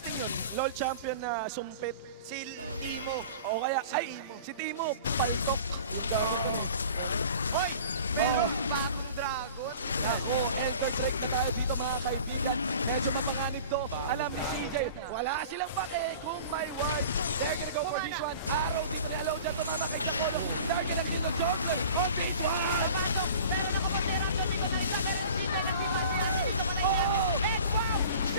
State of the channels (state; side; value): inverted; both; correlation -0.43